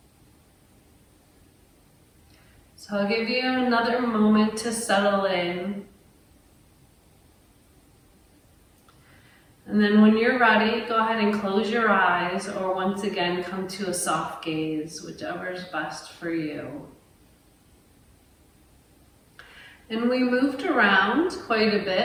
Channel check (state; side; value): identical; both; correlation 1.00